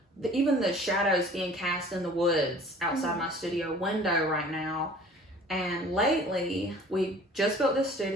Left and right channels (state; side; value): normal; both; correlation 0.49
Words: even the shadows being cast in the woods outside my studio window right now. And lately, we just built this